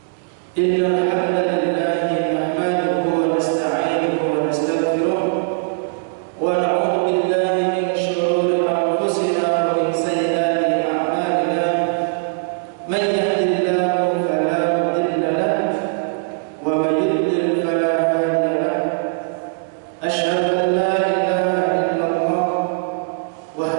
Innal hamdalillah nahmaduhu wa nasta'inuhu wa nastaghfiruh wa na'udzu billahi min shururi anfusina wa min sayyiati a'malina. Man yahdihillahu fala mudilla lahu wa man yudlil fala hadiya lahu. أشهد أن لا إله إلا الله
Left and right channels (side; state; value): left; silent; digital silence